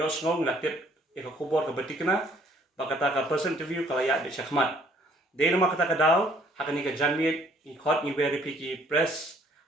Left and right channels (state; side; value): normal; both; correlation 0.61